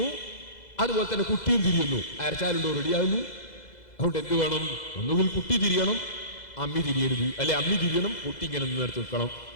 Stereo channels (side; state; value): right; late; 2.0 ms